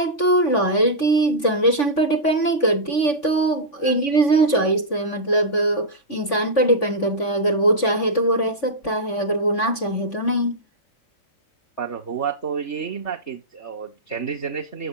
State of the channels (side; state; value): right; late; 3.5 ms